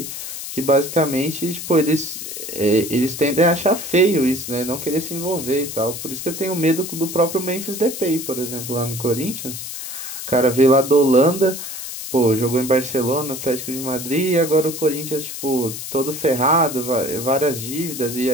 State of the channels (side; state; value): left; noise; hiss, 8 dB below the sound